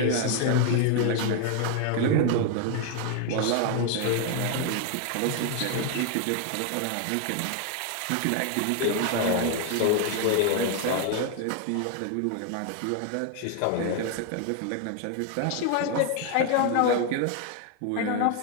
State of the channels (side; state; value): both; different; correlation 0.00